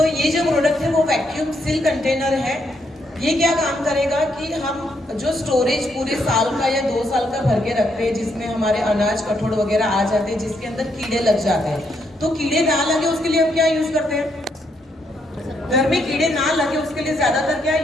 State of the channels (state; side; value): normal; both; correlation 0.76